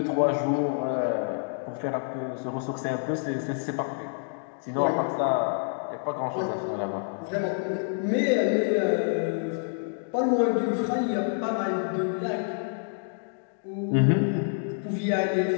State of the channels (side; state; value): right; silent; digital silence